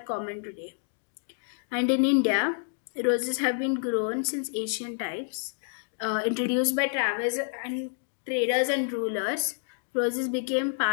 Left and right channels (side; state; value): right; silent; digital silence